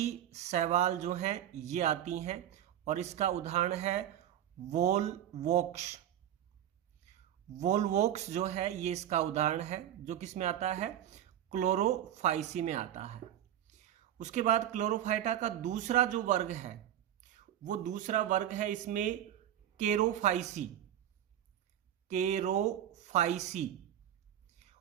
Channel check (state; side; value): quieter; left; 11.2 dB